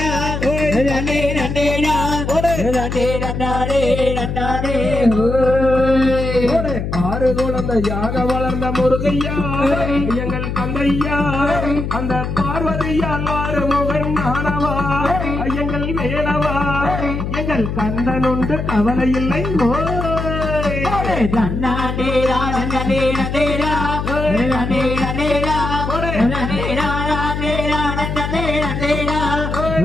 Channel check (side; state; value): left; noise; hum, 4 dB below the sound